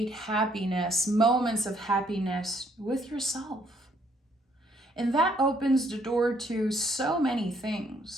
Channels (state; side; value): normal; both; correlation 0.68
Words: happiness, moments of happiness with yourself. And that opens the door to so many